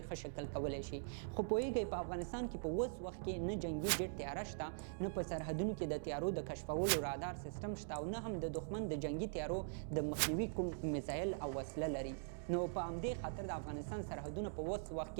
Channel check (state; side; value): silent; left; digital silence